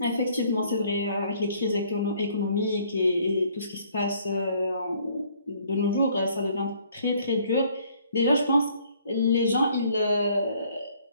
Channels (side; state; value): both; inverted; correlation -0.62